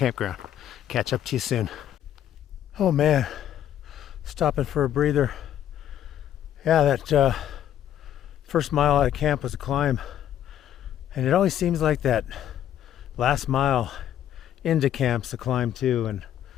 Catch up to you soon. Oh man, stopping for a breather. Yeah, that first mile out of camp was a climb. And it always seems like that last mile into camp's a climb too, and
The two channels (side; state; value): right; quieter; 10.9 dB